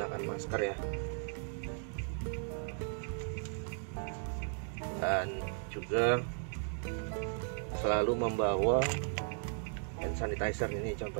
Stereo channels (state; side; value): silent; left; 54 dB below the other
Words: masker ya, dan juga selalu membawa hand sanitizer. Ini